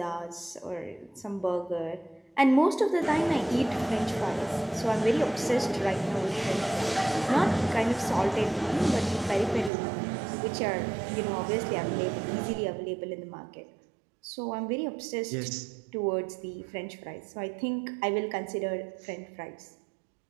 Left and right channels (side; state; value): left; drops out; at 9.7 s